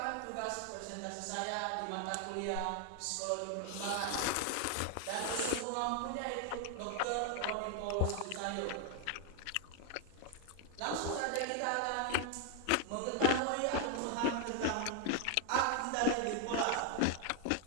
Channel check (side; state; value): both; different; correlation 0.00